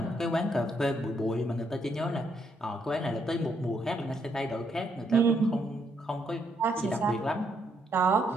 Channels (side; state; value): both; normal; correlation 0.74